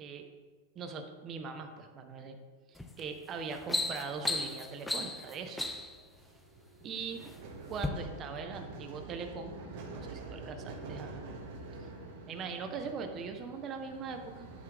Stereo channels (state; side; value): normal; both; correlation 0.49